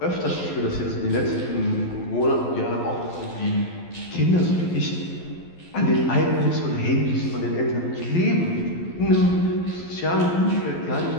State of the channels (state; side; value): late; right; 11 ms